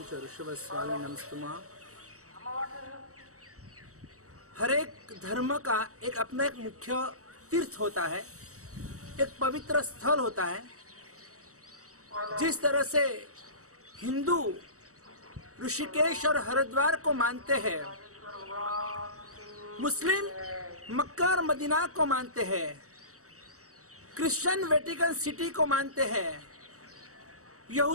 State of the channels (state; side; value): late; left; 0.65 ms